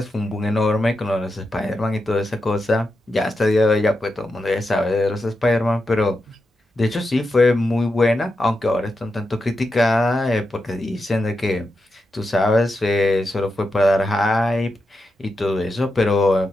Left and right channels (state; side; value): normal; both; correlation 0.87